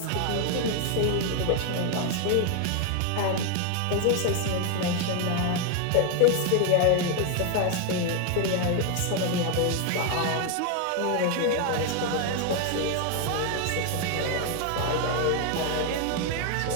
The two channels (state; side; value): different; both; correlation 0.01